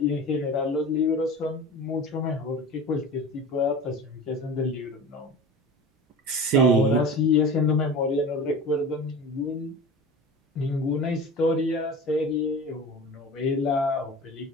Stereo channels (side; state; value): both; normal; correlation 0.34